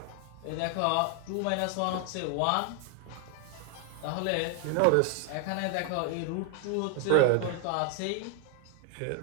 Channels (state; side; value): different; both; correlation 0.00